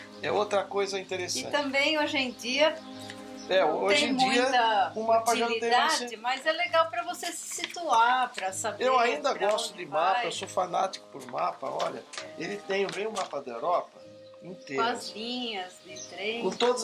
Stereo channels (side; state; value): both; identical; correlation 1.00